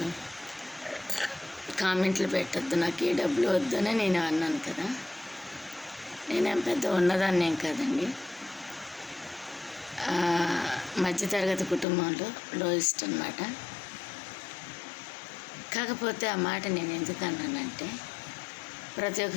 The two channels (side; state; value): right; drops out; at 11.9 s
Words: కామెంట్లు పెట్టద్దు, నాకు ఏ డబ్బులు వద్దని నేను అన్నాను కదా. నేనేం పెద్ద ఉన్నదాన్ని ఏం కాదండి. మధ్యతరగతి కుటుంబంలో లోయెస్ట్ అన్నమాట. కాకపోతే ఆ మాట నేను ఎందుకు అన్నానంటే, ప్రతి